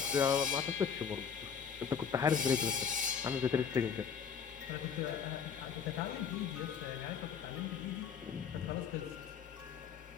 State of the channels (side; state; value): right; quieter; 7.0 dB